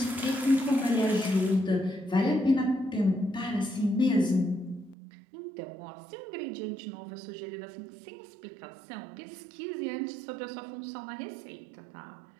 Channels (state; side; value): drops out; left; at 5.0 s